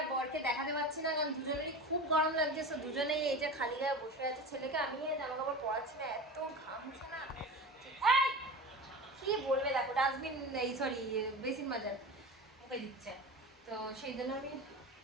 বরকে দেখাতে পাচ্ছি না, কারণ দুজনেরই খুব গরম লাগছে। সো দুজনেই এই যে খালি গায়ে বসে আছে। ছেলেকে আমি জামা কাপড় পরাচ্ছি না, এত ঘামছে না। কি বলবে, দেখো ডাস্টবিন, এই সরি বেসিন মাজার মুখে দিচ্ছে, তো সেই জন্য আমি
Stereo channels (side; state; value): both; normal; correlation 0.30